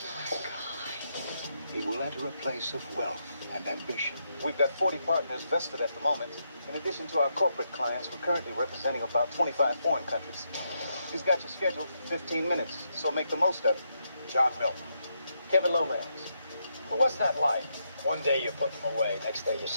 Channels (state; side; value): inverted; both; correlation -0.80